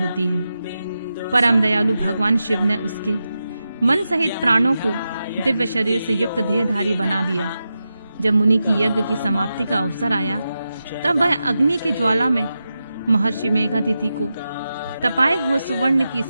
है। परम दयालु भगवान शिव ने उसके मन सहित प्राणों को दिव्य शरीर से युक्त देहधारी बना दिया। जब मुनि की यज्ञ की समाप्ति का अवसर आया, तब वह अग्नि के ज्वाला में महर्षि मेघातिथि को तपाए हुए सुवर्ण की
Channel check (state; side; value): inverted; both; correlation -0.90